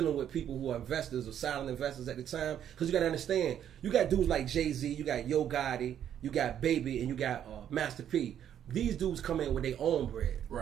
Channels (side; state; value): left; quieter; 9.9 dB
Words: with people who are investors or silent investors at the time, because you got to understand, you got dudes like Jay-Z, you got Yo Gotti, you got Baby, and you got Master P. These dudes come in with their own bread.